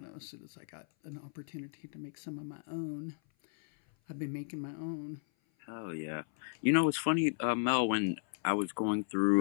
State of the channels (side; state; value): right; silent; 55 dB below the other